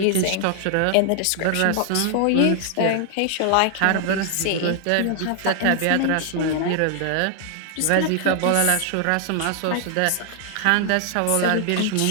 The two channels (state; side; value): different; both; correlation 0.00